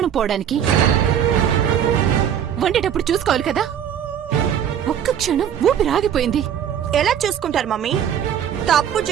పోవడానికి? వండేటప్పుడు చూసుకోవాలి కదా. ఒక్క క్షణం ఊపిరాగిపోయింది. ఎలా చూసుకుంటారు మమ్మీ? తప్పు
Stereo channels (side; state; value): left; quieter; 9.2 dB